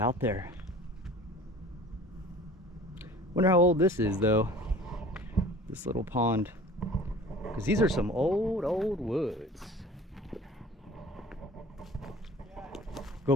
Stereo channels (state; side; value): normal; both; correlation 0.45